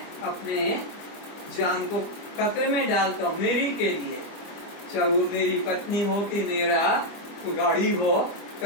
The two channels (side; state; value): right; late; 25 ms